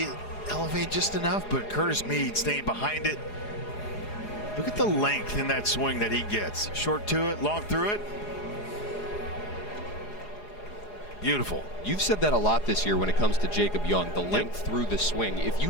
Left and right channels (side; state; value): right; late; 4.8 ms